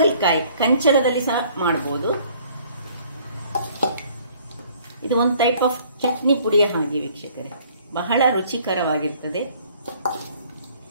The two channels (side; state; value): both; inverted; correlation -0.58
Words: ಕಂಚರದಲ್ಲಿ ಸಹ ಮಾಡ್ಬೋದು. ಇದು ಒಂದು ಟೈಪ್ ಆಫ್ ಚಟ್ನಿ ಪುಡಿಯ ಹಾಗೆ ವೀಕ್ಷಕರೇ, ಬಹಳ ರುಚಿಕರವಾಗಿರ್ತದೆ.